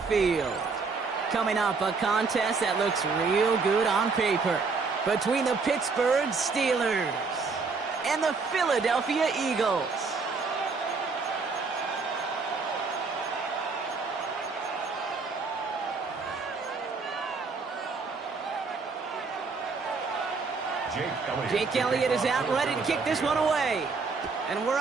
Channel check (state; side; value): quieter; left; 4.5 dB